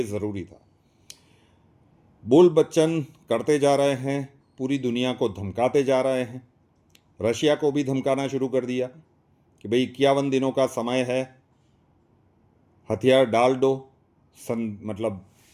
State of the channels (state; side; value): identical; both; correlation 1.00